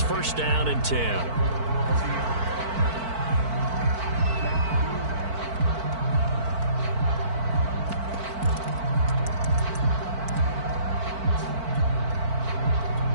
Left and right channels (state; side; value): late; left; 4.5 ms